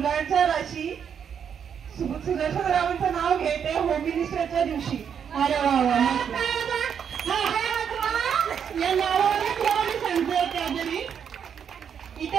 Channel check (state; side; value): quieter; left; 7.8 dB